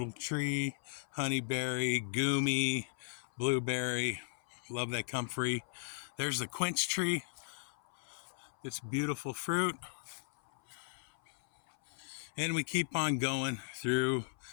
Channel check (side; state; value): right; silent; 53 dB below the other